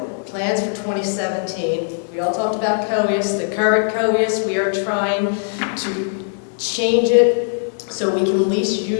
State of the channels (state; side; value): silent; right; digital silence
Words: plans for 2017. We all talked about COEUS. The current COEUS, we are trying to change it so we can at least